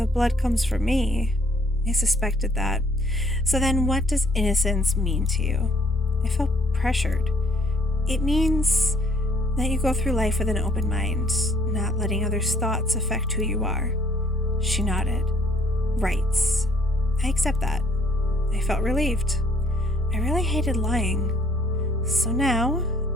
blood comes from me." I suspected that. "So then what does innocence mean to you?" I felt pressured. "It means that you go through life with an open mind, not letting others' thoughts affect who you are." She nodded. "Right. I accept that." I felt relieved. I really hated lying. So now,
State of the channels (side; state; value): both; normal; correlation 0.63